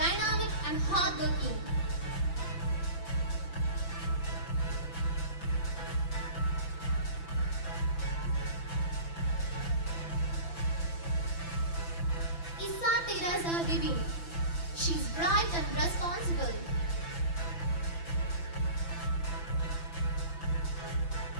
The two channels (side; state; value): right; late; 5.9 ms